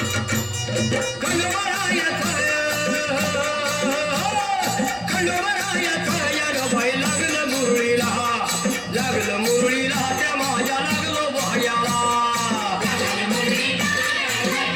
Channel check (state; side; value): identical; both; correlation 1.00